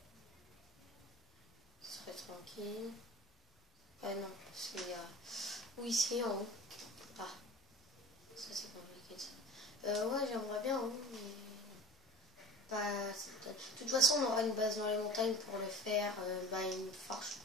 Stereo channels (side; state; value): both; normal; correlation 0.39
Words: Ce serait tranquille. Ah non, c'est oui, ici en haut. Ah, ça c'est compliqué ça. Ouais, j'aimerais bien en haut, mais Bah, de toute façon, on aura une base dans les montagnes pour le faire. Bah, une forge.